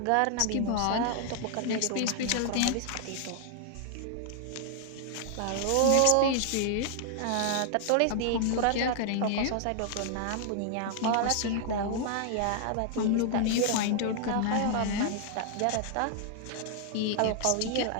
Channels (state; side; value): different; both; correlation 0.00